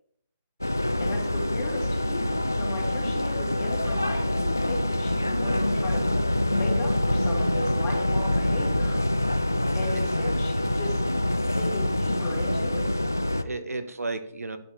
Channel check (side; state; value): both; inverted; correlation -0.94